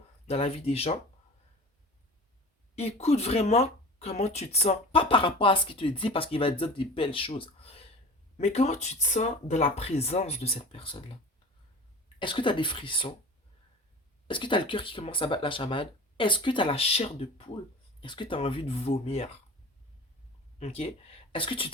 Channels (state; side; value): normal; both; correlation 0.37